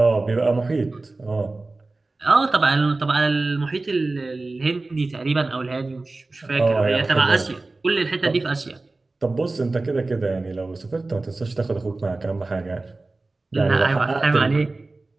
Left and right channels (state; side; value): quieter; left; 3.3 dB